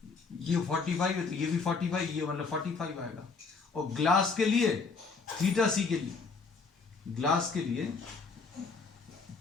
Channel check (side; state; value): right; quieter; 4.6 dB